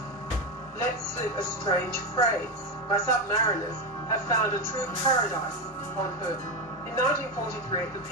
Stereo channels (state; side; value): normal; both; correlation 0.13